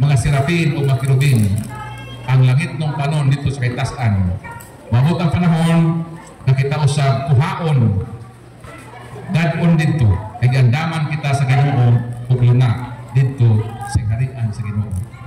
serapin o mga kirubin, ang langit ng panon dito sa kaitasan. Mabot ang panahon na kita usab kuhaon dadon dito, kay gandaman kita sa Ginoo ug luna dito sa harian sa Ginoo.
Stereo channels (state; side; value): identical; both; correlation 1.00